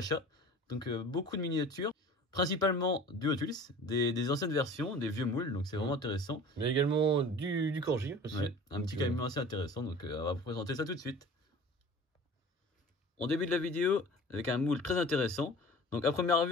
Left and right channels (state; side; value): normal; both; correlation 0.42